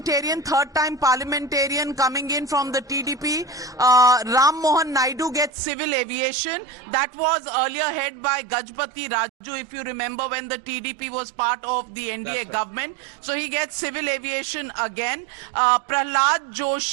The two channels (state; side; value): drops out; left; at 5.5 s